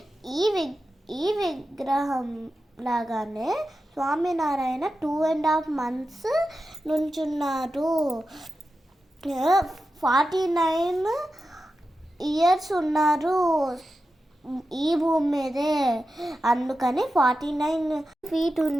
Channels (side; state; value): both; normal; correlation 0.91